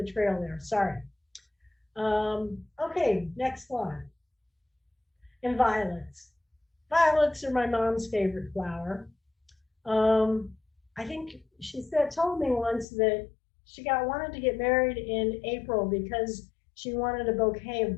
trail there, sorry. Okay, next one. And violets. Violets are my mom's favorite flower. I think she told me once that she wanted to get married in April because she wanted a bouquet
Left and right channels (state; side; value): drops out; right; at 12.9 s